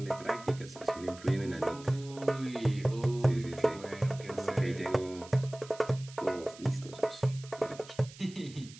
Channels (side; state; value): right; noise; hiss, 19 dB below the sound